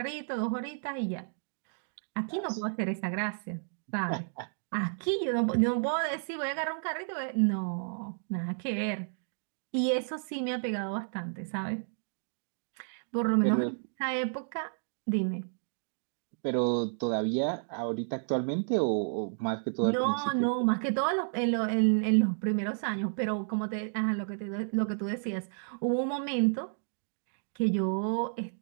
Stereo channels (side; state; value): left; silent; digital silence